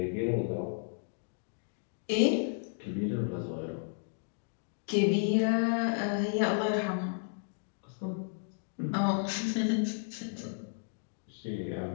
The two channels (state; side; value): silent; right; digital silence